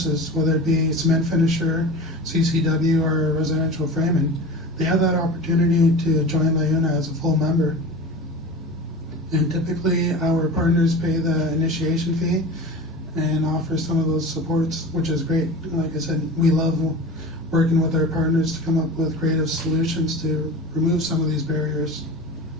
whether it be cement finisher, CCW, or residential framing, they have that opportunity to join LIUNA as a full member. And typically our partners pay the initiation fee and offer some of those supports, which is great. Like I said, we love working with our partners to come up with creative solutions to remove some of these barriers.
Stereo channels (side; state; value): both; normal; correlation 0.33